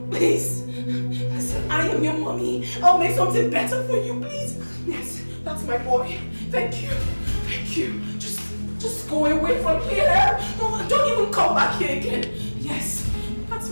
Please. Listen, I am your mommy. I'll make something better for you, please. Yes, that's my boy. Thank you. Thank you. Just go away from here. Don't even come back here again. Yes, that's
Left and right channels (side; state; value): both; inverted; correlation -1.00